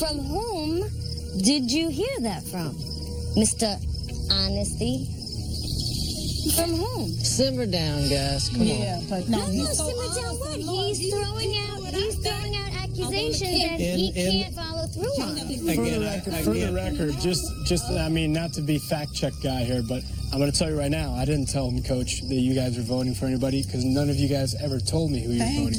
whom did you hear that from? Mr. Honesty? From whom? Simmer down, guys. Come on. But No, simmer down what? He's throwing out accusations that he can't follow through on. For the record, just I mean, not to be fact-check guy here, but I'm going to tell you right now, I didn't tell him, Coach, that you guys were voting for anybody, because none of you guys ever told me who you were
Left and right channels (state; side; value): identical; both; correlation 1.00